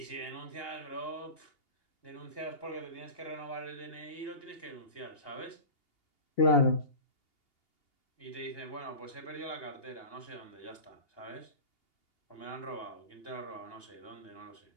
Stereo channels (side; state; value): right; late; 2.8 ms